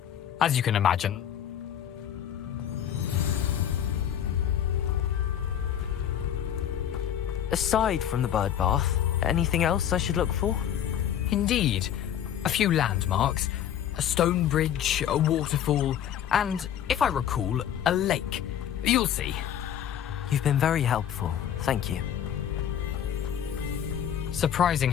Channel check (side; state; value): right; quieter; 9.9 dB